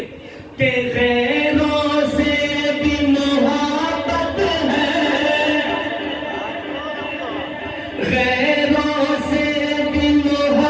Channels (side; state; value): both; identical; correlation 1.00